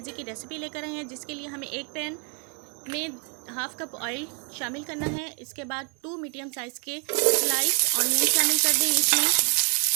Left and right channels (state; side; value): quieter; left; 37.2 dB